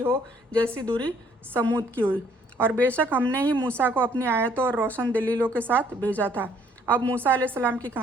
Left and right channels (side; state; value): both; normal; correlation 0.63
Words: जैसी दूरी समूद की हुई। और बेशक हमने ही मूसा को अपनी आयतों और रोशन दलीलों के साथ भेजा था। अब मूसा अलैहिस्सलाम की